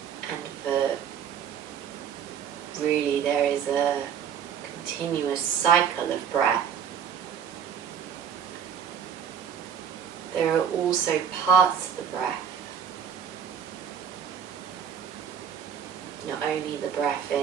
and for really there is a continuous cycle of breath, there are also parts of the breath, not only the breath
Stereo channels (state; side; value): quieter; left; 8.0 dB